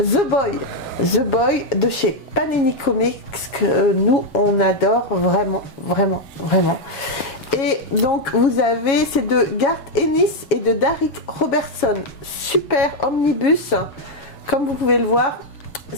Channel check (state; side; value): late; right; 7.2 ms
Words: Boy de chez Panini Comics, que nous on adore vraiment. Et donc vous avez, c'est de Garth Ennis et de Darick Robertson, super omnibus. Comme vous pouvez le voir,